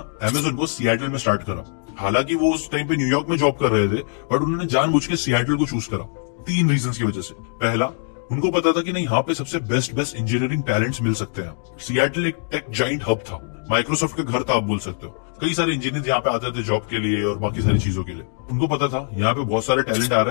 अमेज़न को सिएटल में स्टार्ट करा। हालांकि वो उस टाइम पे न्यूयॉर्क में जॉब कर रहे थे, बट उन्होंने जानबूझ के सिएटल को चूज करा 3 रीजंस की वजह से। पहला, उनको पता था कि नहीं, यहाँ पे सबसे बेस्ट इंजीनियरिंग टैलेंट्स मिल सकते हैं। सिएटल एक टेक जाइंट हब था, माइक्रोसॉफ्ट का घर था आप बोल सकते हो। कई सारे इंजीनियर यहाँ पे आते थे जॉब के लिए और बाकी सारी चीजों के लिए। उनको पता था यहाँ पे बहुत सारे टैलेंट आ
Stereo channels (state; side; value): silent; right; 64 dB below the other